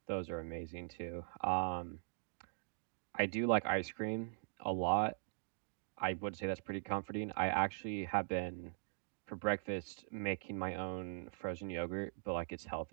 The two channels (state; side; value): silent; left; digital silence